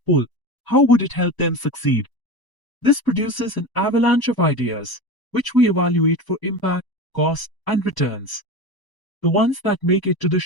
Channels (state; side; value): late; right; 1.0 ms